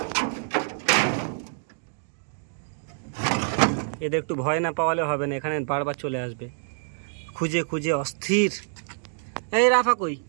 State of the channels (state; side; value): silent; left; digital silence